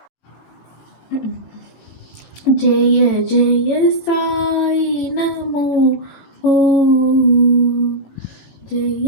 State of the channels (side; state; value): right; late; 18 ms